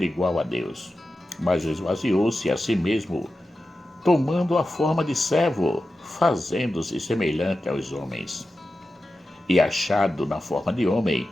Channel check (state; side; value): normal; both; correlation 0.92